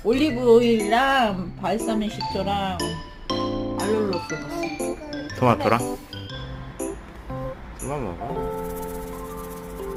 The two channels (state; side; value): identical; both; correlation 1.00